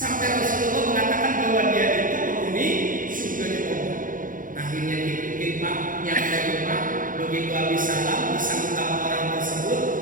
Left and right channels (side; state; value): left; late; 0.39 ms